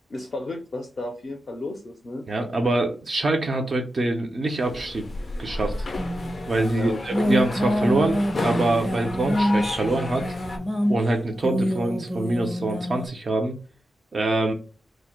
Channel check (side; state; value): both; normal; correlation 0.89